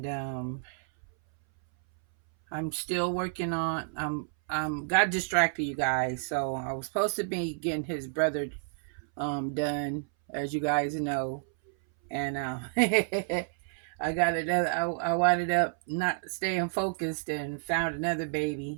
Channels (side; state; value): left; silent; 58 dB below the other